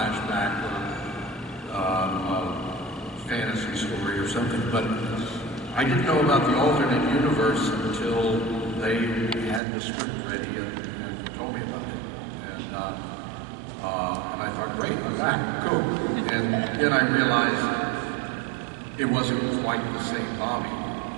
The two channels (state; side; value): drops out; left; at 9.6 s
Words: or fantasy story or something, but I didn't know about the alternate universe until they had the script ready and told me about it. And I thought, great, I'm back, cool. And then I realized it wasn't quite the same Bobby,